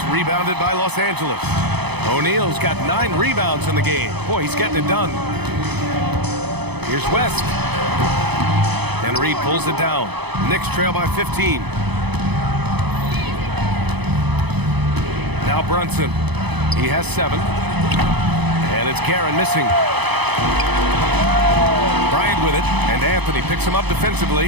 rebounded by Los Angeles. O'Neal's got 9 rebounds in the game. Boy, he's getting it done. Here's West. And Reed pulls it down. Knicks trail by 15. Now Brunson. He has 7. And it's Guerin missing. Bryant with it, and Anthony picks him up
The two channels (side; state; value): left; late; 0.99 ms